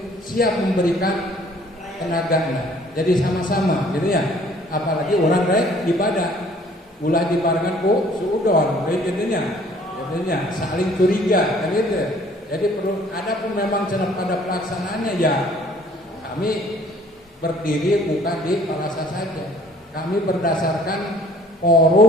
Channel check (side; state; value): both; normal; correlation 0.57